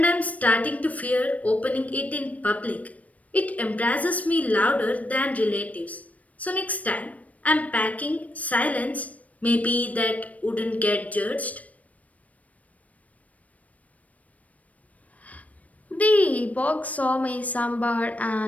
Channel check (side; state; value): right; late; 0.069 ms